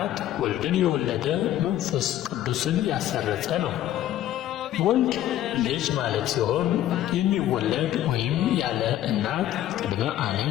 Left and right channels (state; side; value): quieter; right; 12.7 dB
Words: ወልድን የወለደ መንፈስ ቅዱስን ያሰረጸ ነው። ወልድ ልጅ ማለት ሲሆን የሚወለድ ወይም ያለ እናት ቅድመ ዓለም